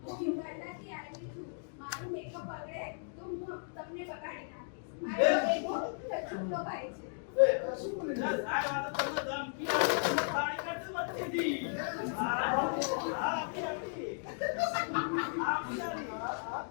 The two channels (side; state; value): right; silent; digital silence